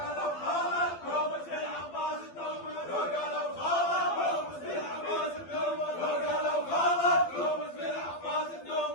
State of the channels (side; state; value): right; late; 12 ms